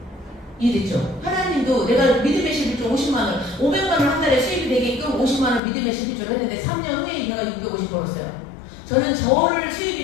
이해됐죠? 하나님도 내가 믿음의 11조 50만원, 500만원 한 달에 수입이 되게끔 50만원 믿음의 11조를 했는데 3년 후에 내가 650 벌었어요. 저는 저를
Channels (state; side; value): drops out; right; at 5.6 s